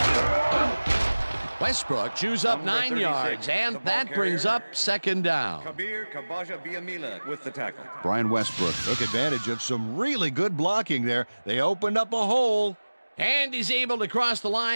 Westbrook chews up 9 yards, and that brings up second down. Kabir Kabaja-Biamila with the tackle. Brian Westbrook took advantage of some really good blocking there. They opened up a hole. And he's able to cross the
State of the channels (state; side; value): inverted; both; correlation -1.00